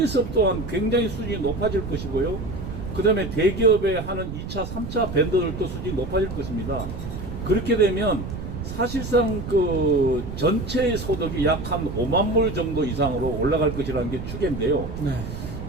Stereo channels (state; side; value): noise; right; rumble, 8 dB below the sound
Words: 또한 굉장히 수준이 높아질 것이고요. 그 다음에 대기업에 하는 2차, 3차 벤더들도 수준이 높아질 것입니다. 그렇게 되면 사실상 그 전체의 소득이 약 한 5만 불 정도 이상으로 올라갈 것이라는 게 추계인데요. 네.